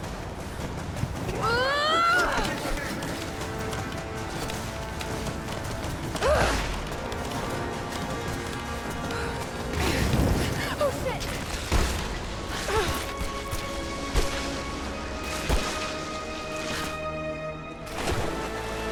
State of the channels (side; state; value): both; identical; correlation 1.00